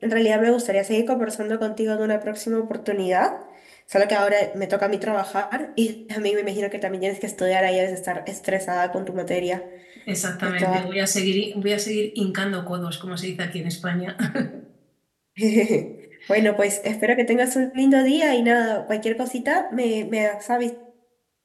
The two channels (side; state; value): both; identical; correlation 1.00